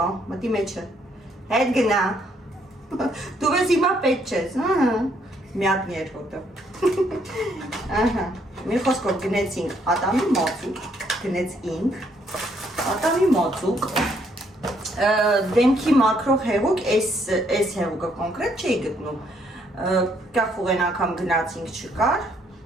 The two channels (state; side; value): normal; both; correlation 0.70